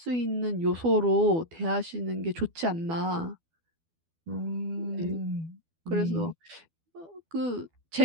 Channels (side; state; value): left; late; 12 ms